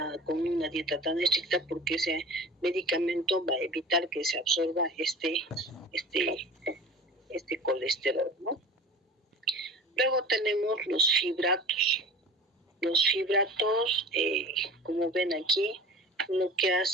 con una dieta tan estricta porque ese medicamento va a evitar que se absorba este colesterol, ¿no? Luego tenemos los fibratos. Los fibratos, como ven aquí, lo que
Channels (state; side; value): normal; both; correlation 0.38